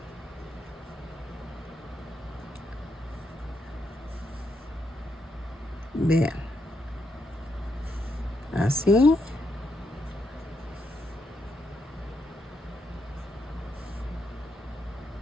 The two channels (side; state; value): both; normal; correlation 0.79